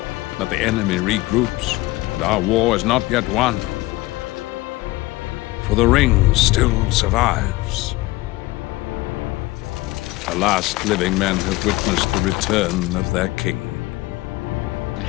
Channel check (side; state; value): right; quieter; 20.0 dB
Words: But the enemy regroups, and our war is not yet won. For the ring still survives. The last living men have witnessed the return of their king.